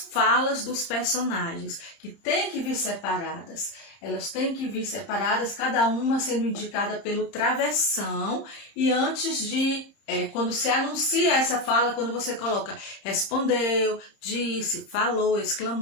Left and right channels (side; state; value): right; late; 30 ms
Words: falas dos personagens, que tem que vir separadas. Elas têm que vir separadas, cada uma sendo indicada pelo travessão e antes de quando se anuncia essa fala, quando você coloca respondeu, disse, falou,